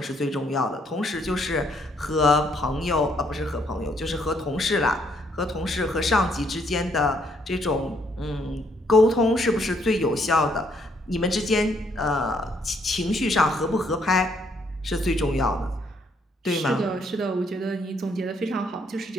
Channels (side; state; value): both; normal; correlation 0.70